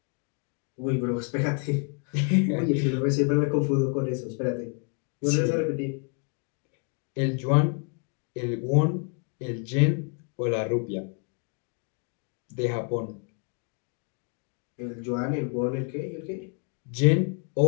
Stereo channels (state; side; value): quieter; right; 38.4 dB